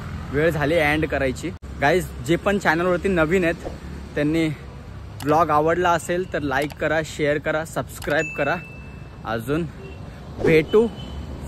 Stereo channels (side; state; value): both; identical; correlation 1.00